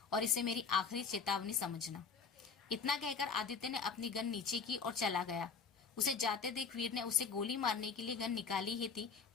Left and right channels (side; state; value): right; quieter; 5.5 dB